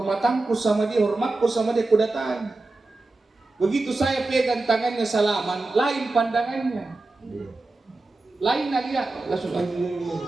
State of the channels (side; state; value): left; quieter; 3.2 dB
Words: sama dia, hormatku sama dia, aku datangi. Begitu saya pegang tangannya salaman, lain pandangannya. Lain dia langsung